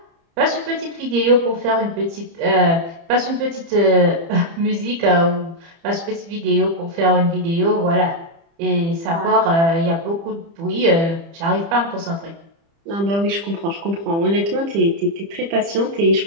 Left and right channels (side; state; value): left; late; 30 ms